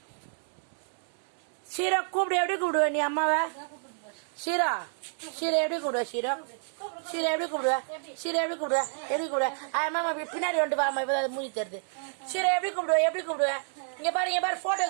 ஷீரா கூப்பிடு. எப்படி கூப்பிடுவ நீ அம்மாவை? ஷீரா ஷீரா எப்படி கூப்பிடுவ? ஷீரா ஷீரா எப்படி கூப்பிடுவ? ஷீரா எப்படி கூப்பிடுவ? எப்படி கூப்பிடுவ? அம்மா பின்னாடி வந்து வாமா, இப்ப மூடி தருது. ஷீரா எப்படி கூப்பிடுவ? எப்படி கூப்பிடுவ? இங்க பாரு, இங்க பாரு, போட்டோ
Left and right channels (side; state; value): left; silent; 58 dB below the other